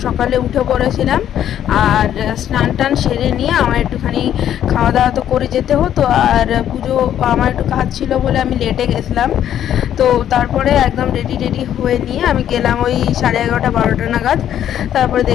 সকালে উঠে পড়েছিলাম, আর স্নান টান সেরে নিয়ে আমার একটুখানি খাওয়া দাওয়া তো করে যেতে হতো, আর পুজো আমার একটু কাজ ছিল বলে আমি লেটে গেছিলাম। তো তারপরে একদম রেডি হয়ে নিয়ে আমি গেলাম ওই 11:30-12টা নাগাদ। তারপরে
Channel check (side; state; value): right; quieter; 10.6 dB